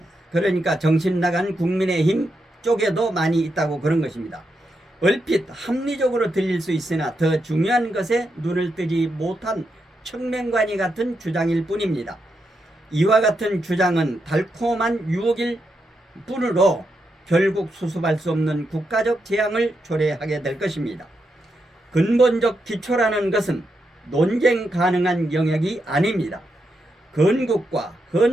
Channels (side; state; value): both; normal; correlation 0.84